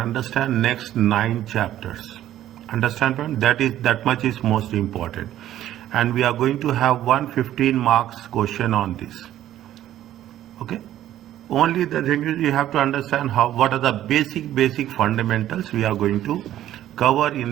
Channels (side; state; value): left; quieter; 12.6 dB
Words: next 9 chapters. Understand? That much is most important. And we are going to have 115 marks question on this. Okay. Only the thing is you have to understand what are the basic fundamentals we are going to cover